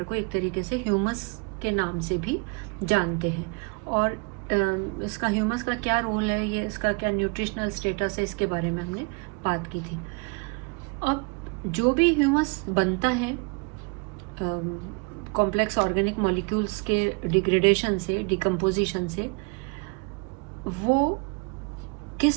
को एक तरीके से ह्यूमस के नाम से भी जानते हैं। और इसका ह्यूमस का क्या रोल है, ये इसका क्या न्यूट्रिशनल स्टेटस है, इसके बारे में हमने बात की थी। अब जो भी ह्यूमस बनता है कॉम्प्लेक्स ऑर्गेनिक मॉलिक्यूल्स के डिग्रेडेशन से, डिकम्पोजिशन से, वो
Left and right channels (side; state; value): left; quieter; 32.3 dB